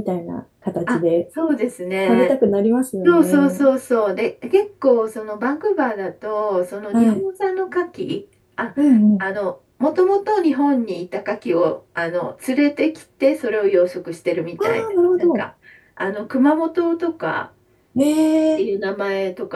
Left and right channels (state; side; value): identical; both; correlation 1.00